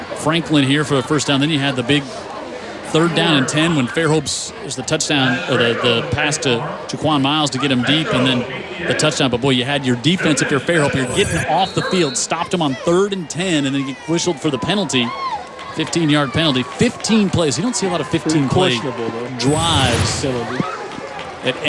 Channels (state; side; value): identical; both; correlation 1.00